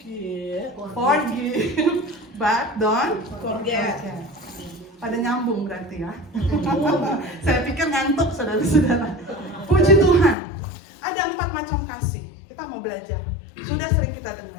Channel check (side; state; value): right; drops out; at 10.4 s